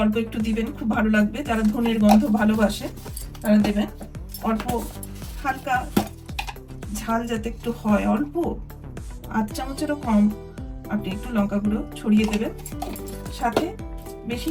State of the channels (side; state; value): both; identical; correlation 1.00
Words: অল্প একটু দিবেন, খুব ভালো লাগবে। যারা ধনের গন্ধ ভালোবাসে তারা দেবেন। অল্প হালকা ঝাল যাতে একটু হয়, অল্প 8 চামচেরও কম আপনি একটু লঙ্কা গুঁড়ো ছড়িয়ে দেবেন। সাথে বেশি